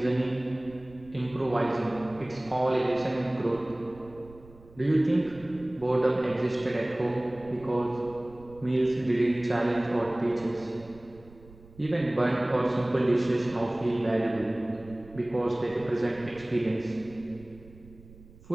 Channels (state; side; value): noise; right; rumble, 22 dB below the sound